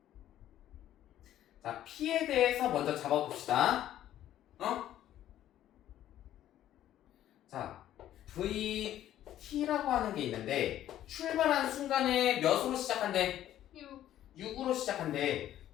자 P에 대해서 먼저 잡아봅시다. 자 VT라고 하는 게 있는데 출발한 순간에 몇으로 시작한대? 6. 6으로 시작한대.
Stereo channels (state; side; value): quieter; right; 12.3 dB